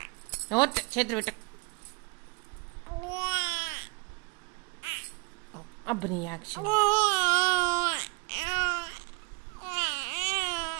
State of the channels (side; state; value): left; quieter; 29.9 dB